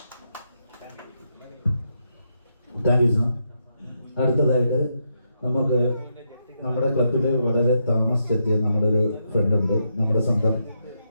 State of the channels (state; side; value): inverted; both; correlation -0.81